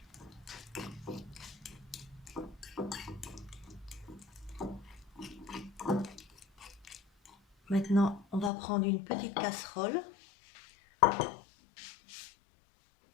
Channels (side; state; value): right; drops out; at 8.5 s